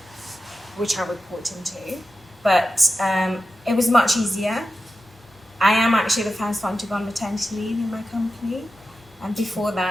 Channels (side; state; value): both; normal; correlation 0.92